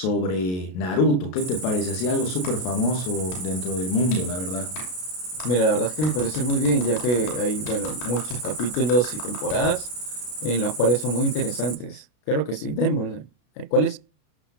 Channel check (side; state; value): right; late; 33 ms